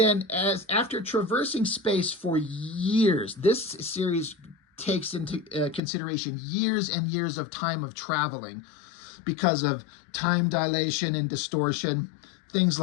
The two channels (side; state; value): right; drops out; at 5.8 s